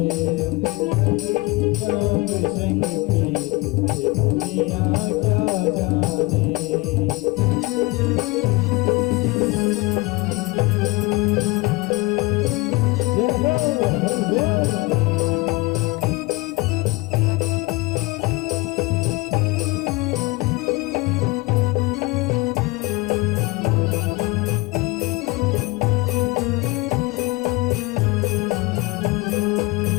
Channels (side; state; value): right; quieter; 23.4 dB